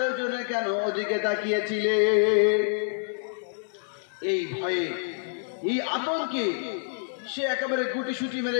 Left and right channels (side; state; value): right; silent; digital silence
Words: কেন ওদিকে তাকিয়েছিলে? এই ভয়ে, এই আতঙ্কে সে একেবারে গুটিসুটি